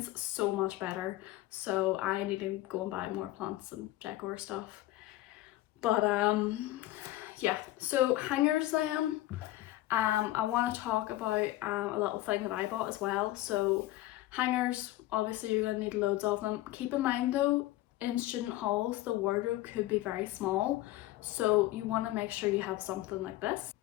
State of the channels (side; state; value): right; quieter; 16.4 dB